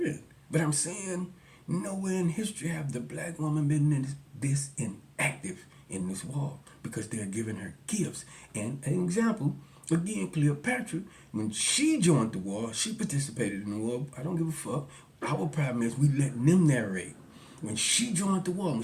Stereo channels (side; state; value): both; identical; correlation 1.00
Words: But I'm saying nowhere in history have the black woman been this inactive in this war because they're giving her gifts. And an example, again, Cleopatra, when she joined the war, she participated in the war. I don't give a fuck. Our problem is we letting them narrate. When she joined the war, when